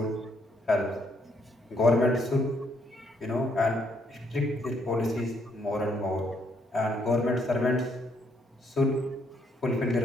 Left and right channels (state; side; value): normal; both; correlation 0.71